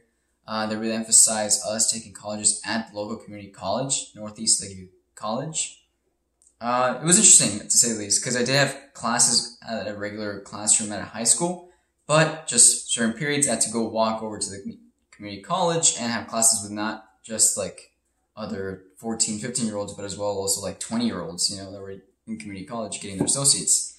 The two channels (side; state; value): both; identical; correlation 1.00